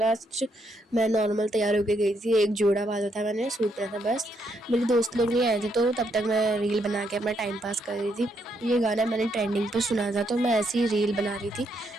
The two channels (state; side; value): normal; both; correlation 0.76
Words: मैं नॉर्मल तैयार होके गई थी, एक जोड़ा बांधा था, मैंने सूट पहना था बस। मेरे दोस्त लोग नहीं आए थे तो तब तक मैं रील बना के अपना टाइम पास कर रही थी। ये गाना मैंने ट्रेंडिंग पर सुना था तो मैं ऐसी ही रील बना रही थी।